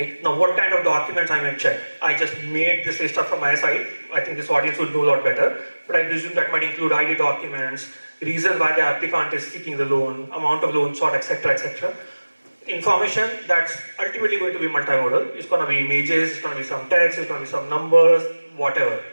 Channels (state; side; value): inverted; both; correlation -1.00